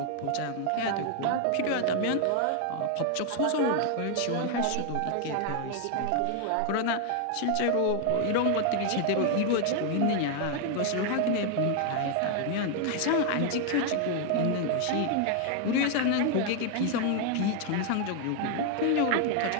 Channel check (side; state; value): both; different; correlation 0.00